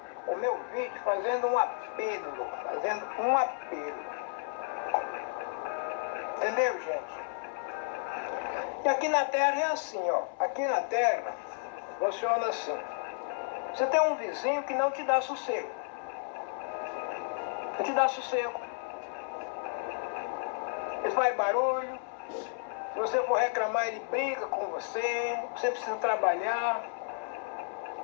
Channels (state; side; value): silent; right; 56 dB below the other